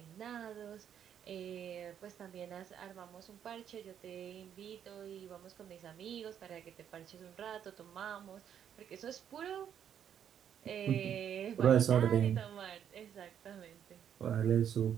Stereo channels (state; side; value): quieter; left; 9.0 dB